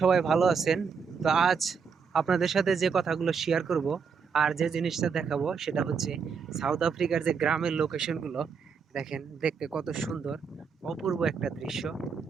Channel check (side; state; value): left; quieter; 5.9 dB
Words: সবাই ভালো আছেন। তো আজ আপনাদের সাথে যে কথাগুলো শেয়ার করব আর যে জিনিসটা দেখাবো সেটা হচ্ছে সাউথ আফ্রিকার যে গ্রামের লোকেশনগুলো। দেখেন দেখতে কত সুন্দর, অপূর্ব একটা দৃশ্য।